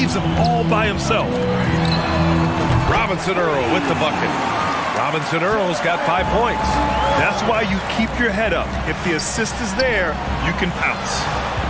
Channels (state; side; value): identical; both; correlation 1.00